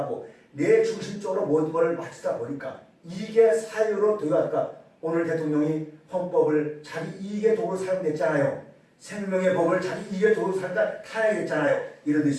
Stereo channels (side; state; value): both; identical; correlation 1.00